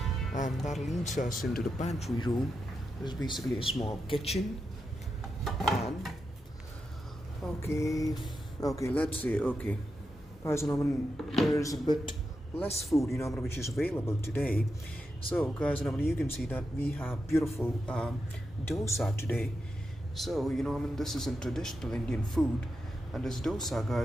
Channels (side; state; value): both; normal; correlation 0.88